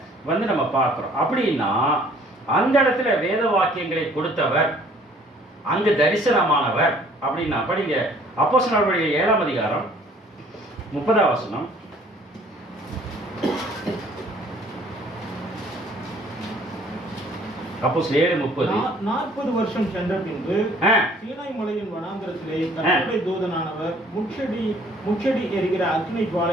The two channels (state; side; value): normal; both; correlation 0.57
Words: நம்ம பார்க்கிறோம். அப்படின்னா அந்த இடத்துல வேத வாக்கியங்களை கொடுத்தவர், அங்கு தரிசனமானவர். அப்படின்னா படிங்க அப்போஸ்தலர்கள் 7ஆம் அதிகாரம் 30ஆம் வசனம். அப்போஸ்தலர் 7:30. 40 வருஷம் சென்ற பின்பு சீனாய் மலையின் வனாந்தரத்திலே கர்த்தருடைய தூதனானவர் முச்செடி எரிகிற அக்கினி